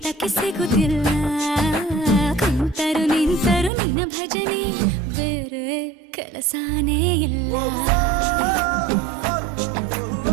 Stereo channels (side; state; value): left; drops out; at 3.7 s